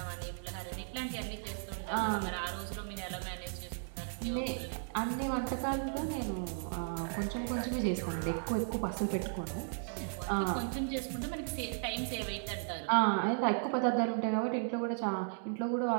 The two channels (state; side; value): silent; left; digital silence